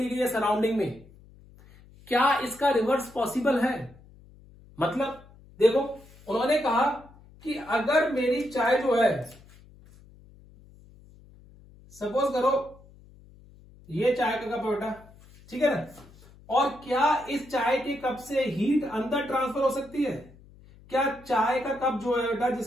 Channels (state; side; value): noise; left; hum, 24 dB below the sound